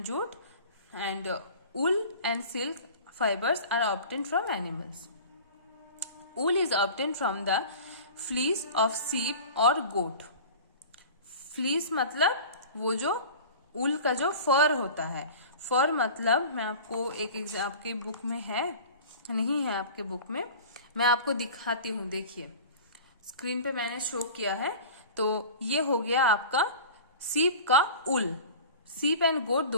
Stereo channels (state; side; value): inverted; both; correlation -0.38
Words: jute, and wool and silk fibers are obtained from animals। wool is obtained from the fleece of sheep or goat। fleece मतलब वो जो wool का जो फर होता है, फर मतलब मैं आपको आपके बुक में है, नहीं है आपके बुक में, मैं आपको दिखाती हूँ। देखिए स्क्रीन पे मैंने शो किया है, तो ये हो गया आपका सीप का उल। सीप एंड गोट